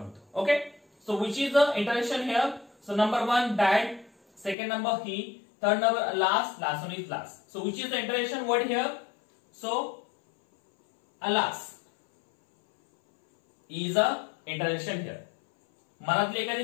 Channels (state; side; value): drops out; right; at 4.5 s